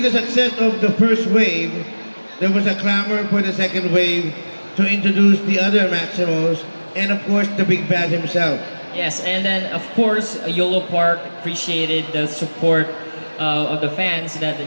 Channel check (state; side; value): inverted; both; correlation -1.00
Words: the success of the first wave, there was a clamor for the second wave to introduce the other Maximals and of course the Big Bad himself. Yes, and then of course Yolopark appreciated the support of the fans that